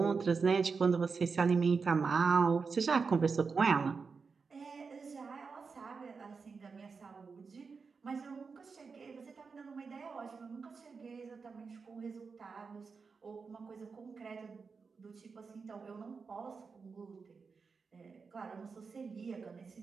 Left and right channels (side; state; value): left; quieter; 5.0 dB